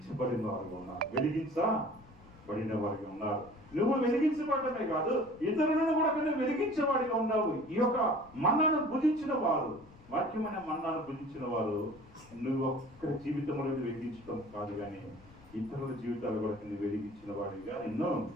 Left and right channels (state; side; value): noise; left; rumble, 23 dB below the sound